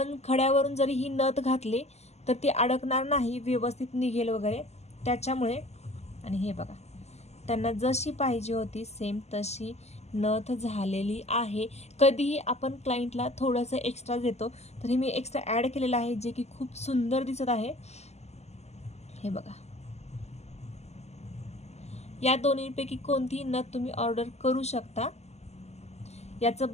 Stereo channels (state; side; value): late; right; 0.32 ms